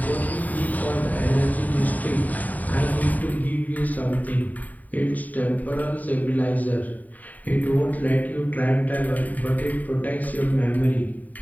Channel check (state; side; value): late; right; 0.077 ms